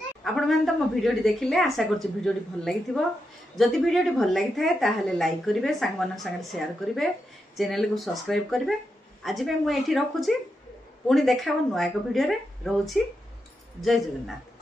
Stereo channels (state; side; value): normal; both; correlation 0.86